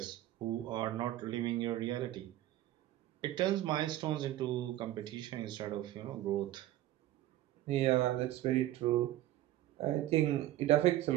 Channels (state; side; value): quieter; left; 14.4 dB